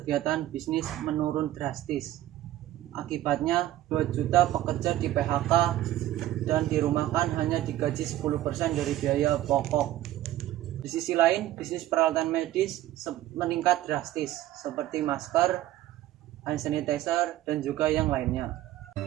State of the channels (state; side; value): quieter; left; 14.2 dB